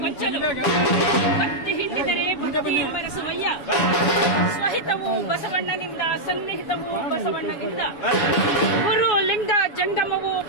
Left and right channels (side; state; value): right; late; 7.0 ms